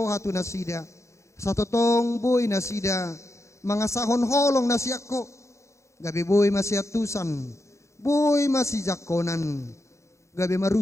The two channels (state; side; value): late; right; 0.14 ms